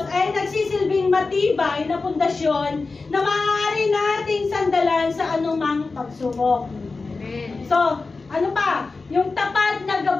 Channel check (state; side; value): quieter; right; 3.9 dB